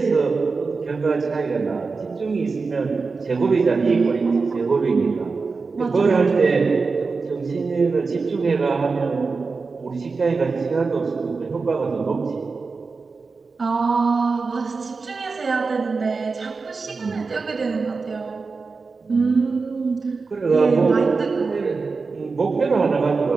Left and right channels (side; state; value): left; quieter; 4.4 dB